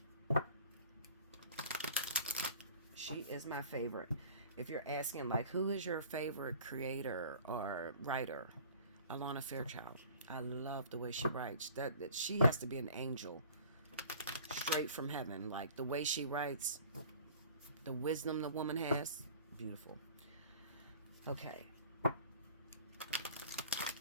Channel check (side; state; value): both; inverted; correlation -0.46